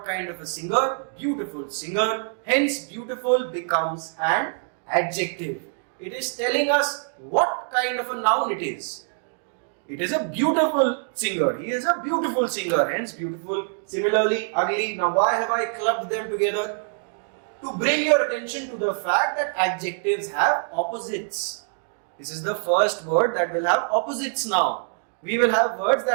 kind of a singer, beautiful singer. Hence beautiful becomes an adjective. It is telling us what kind of a noun it is. It is a beautiful singer. He is a beautiful singer. Hence beautiful. Similarly, ugly. Now why have I clubbed them together? To bring your attention to the fact that adjectives have opposites. This is the first word that will have opposites now. We will have words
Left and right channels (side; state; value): left; silent; digital silence